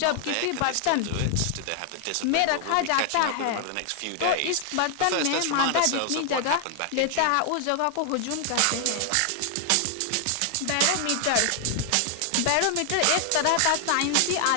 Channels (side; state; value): both; different; correlation 0.00